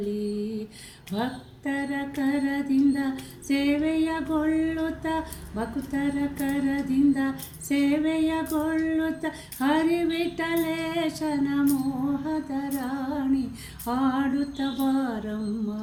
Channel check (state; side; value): identical; both; correlation 1.00